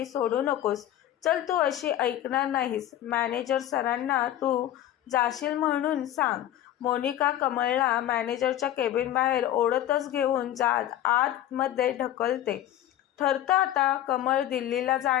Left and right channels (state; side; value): quieter; right; 12.4 dB